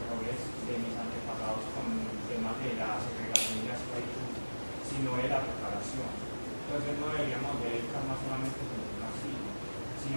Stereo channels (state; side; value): inverted; both; correlation -1.00